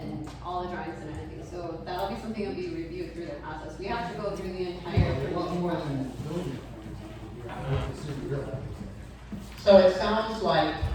So it sounds like,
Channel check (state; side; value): identical; both; correlation 1.00